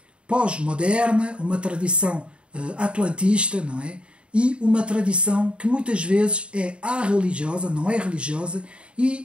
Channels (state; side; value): late; left; 0.056 ms